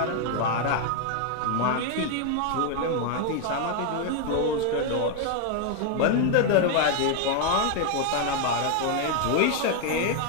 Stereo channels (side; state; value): both; different; correlation 0.01